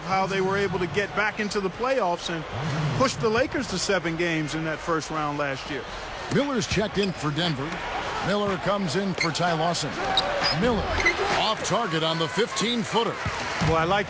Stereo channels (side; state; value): both; identical; correlation 1.00